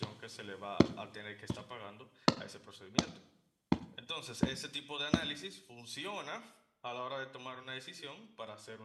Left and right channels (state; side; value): identical; both; correlation 1.00